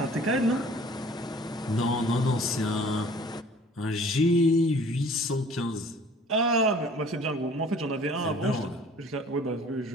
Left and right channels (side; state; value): both; normal; correlation 0.50